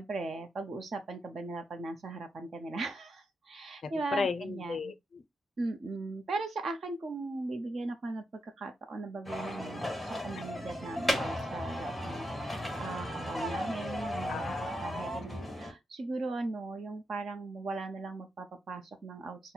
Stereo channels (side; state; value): both; normal; correlation 0.84